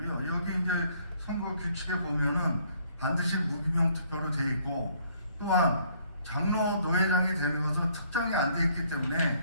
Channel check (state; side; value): inverted; both; correlation -0.64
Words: 여기 이제 선거 규칙에 보면은 반드시 무기명 투표로 되어 있고, 또한 장로 노회장이 되는 것은 특정이 안 돼 있기